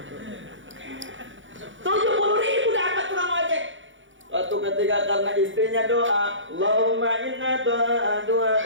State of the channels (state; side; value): late; left; 0.56 ms